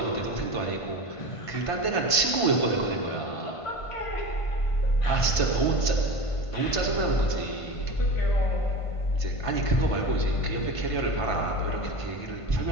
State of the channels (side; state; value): right; late; 1.5 ms